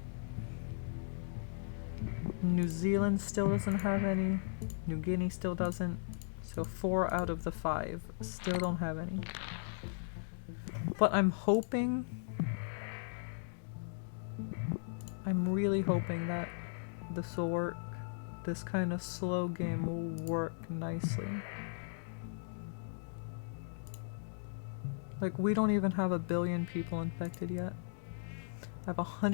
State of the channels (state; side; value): silent; right; digital silence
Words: New Zealand still doesn't have any. New Guinea still doesn't. So 4 out of the 5 still don't have any. But I'm hoping... I'm really hoping that this will work. This kind of slow game will work nicely. Like, we don't even have 1 billion people infected yet. I have